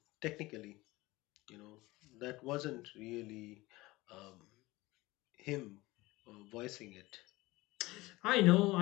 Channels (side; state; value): right; quieter; 20.3 dB